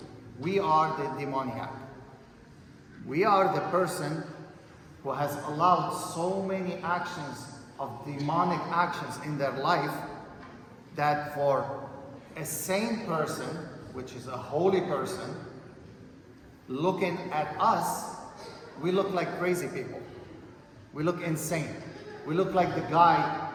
we are the demoniac. We are the person who has allowed so many actions of demonic actions in their life that for a sane person, which is a holy person, looking at us, we look like crazy people. We look insane. We look like the guy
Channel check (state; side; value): identical; both; correlation 1.00